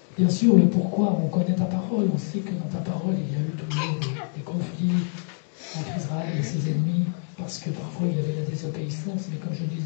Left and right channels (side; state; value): right; silent; 61 dB below the other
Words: Bien sûr, le pourquoi, on connaît ta parole, on sait que dans ta parole, il y a eu toujours des conflits entre Israël et ses ennemis, parce que parfois il y avait la désobéissance, mais comme je le